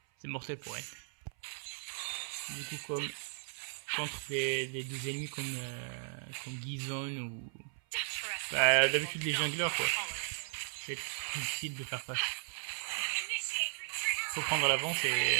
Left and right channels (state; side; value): silent; left; 54 dB below the other